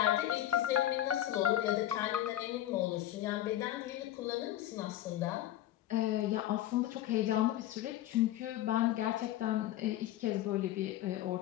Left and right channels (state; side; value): quieter; right; 13.3 dB